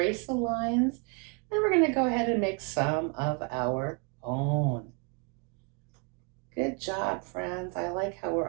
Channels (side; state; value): left; quieter; 34.4 dB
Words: the lines. Then we're going to go ahead and make some of our own. Good job, friends. I like how